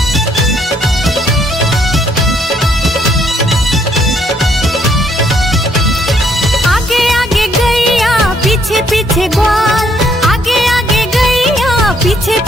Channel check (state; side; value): normal; both; correlation 0.69